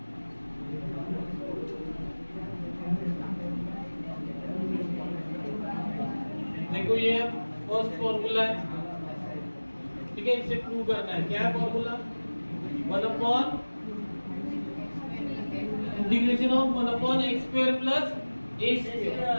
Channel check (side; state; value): both; inverted; correlation -1.00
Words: देखो ये फर्स्ट फॉर्मूला है, ठीक है, इसे प्रूव करना है। क्या है formula? 1 upon integration of 1 upon x square plus a